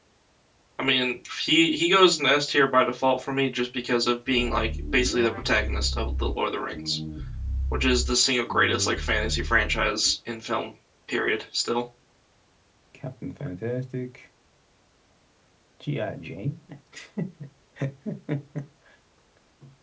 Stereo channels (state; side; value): identical; both; correlation 1.00